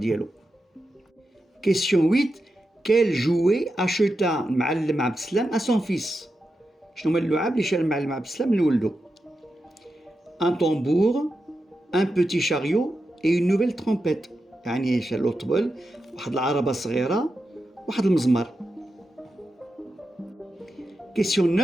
Question 8: quel jouet acheta المعلم عبد السلام à son fils؟ شنو هما اللعاب اللي شرا المعلم عبد السلام لولدو؟ un tambour, un petit chariot et une nouvelle trompette. يعني شرا له طبل، واحد العربة صغيرة، واحد المزمار. Question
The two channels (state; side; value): normal; both; correlation 0.89